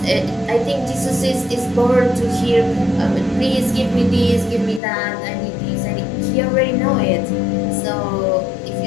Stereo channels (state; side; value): drops out; right; at 4.8 s